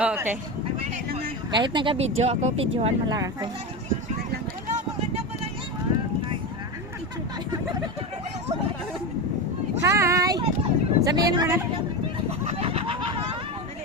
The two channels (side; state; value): both; normal; correlation 0.19